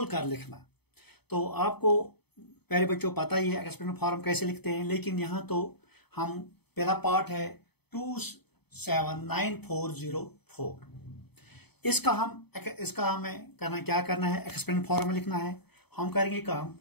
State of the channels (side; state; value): right; late; 0.98 ms